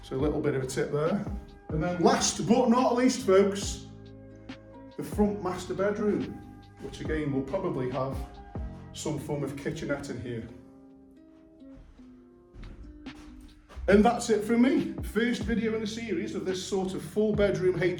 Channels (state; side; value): identical; both; correlation 1.00